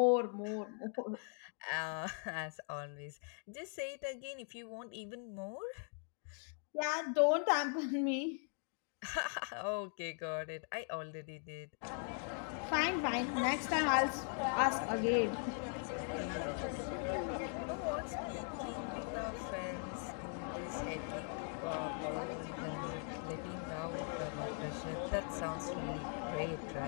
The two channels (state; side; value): silent; right; 51 dB below the other